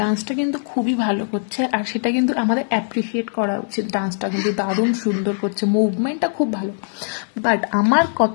ডান্সটা কিন্তু খুবই ভালো করছে, আর সেটা কিন্তু আমাদের অ্যাপ্রিসিয়েট করা উচিত। ডান্সটা কিন্তু দারুণ সুন্দর করছে, মুভমেন্টটা খুব ভালো। বাট আমার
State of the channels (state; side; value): silent; right; digital silence